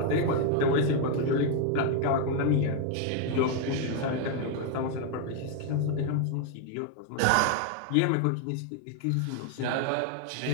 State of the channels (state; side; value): different; both; correlation 0.01